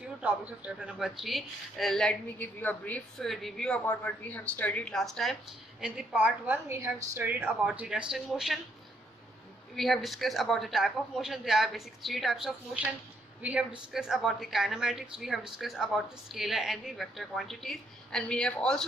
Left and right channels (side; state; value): both; normal; correlation 0.72